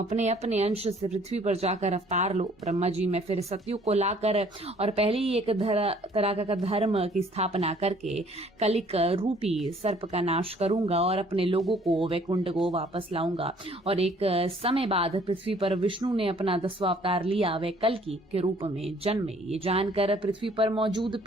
अपने अंश से पृथ्वी पर जाकर अवतार लो। ब्रह्मा जी मैं फिर सतयुग को लाकर और पहले ही एक तरह का धर्म की स्थापना करके कलिक रूपी सर्प का नाश करूंगा और अपने लोगों को वैकुंठ को वापस लाऊंगा। और एक समय बाद पृथ्वी पर विष्णु ने अपना 10वां अवतार लिया, वे कल्कि के रूप में जन्मे। ये जानकर पृथ्वी पर मौजूद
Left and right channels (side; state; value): both; normal; correlation 0.58